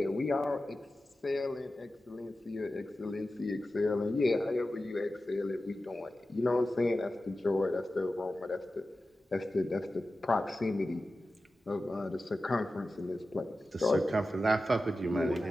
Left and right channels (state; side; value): normal; both; correlation 0.93